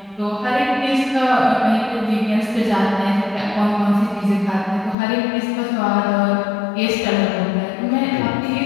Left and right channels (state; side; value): drops out; right; at 5.0 s